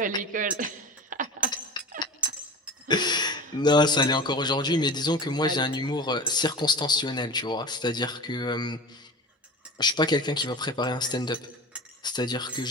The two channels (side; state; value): both; normal; correlation 0.34